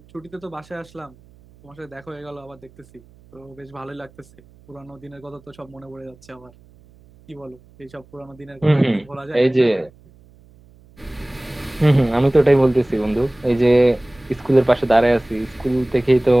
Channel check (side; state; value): right; noise; hum, 27 dB below the sound